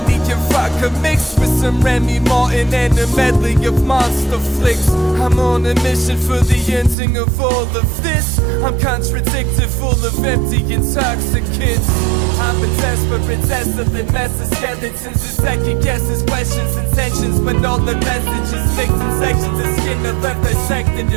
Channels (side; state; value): left; drops out; at 7.0 s